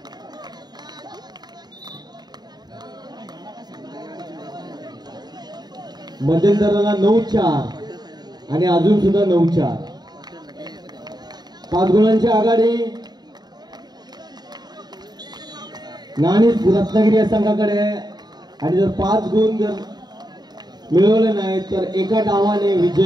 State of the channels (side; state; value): left; late; 0.20 ms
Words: मध्यंतराला 9-4 आणि अजून सुद्धा 9-4 5 गुणांची आघाडी नाणीच रत्नागिरी या संघाकडे आहे आणि जर 5 गुण जर मिळवले नाही तर एका डावाने